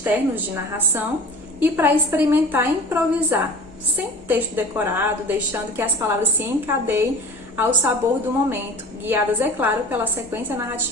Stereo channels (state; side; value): normal; both; correlation 0.40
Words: de narração e para experimentar improvisar, sem texto decorado, deixando que as palavras se encadeiem ao sabor do momento, guiadas, é claro, pela sequência